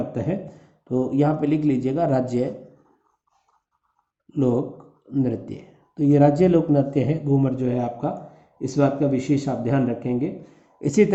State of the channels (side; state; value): both; identical; correlation 1.00